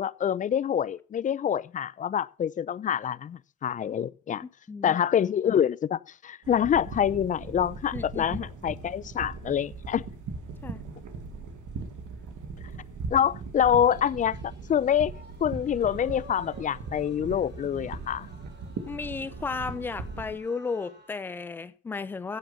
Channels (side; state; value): right; quieter; 7.5 dB